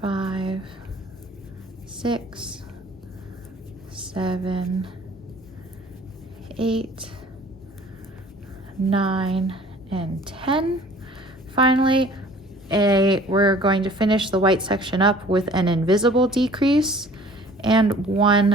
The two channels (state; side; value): normal; both; correlation 0.50